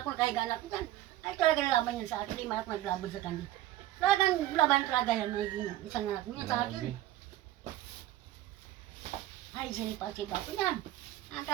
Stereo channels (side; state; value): left; quieter; 14.3 dB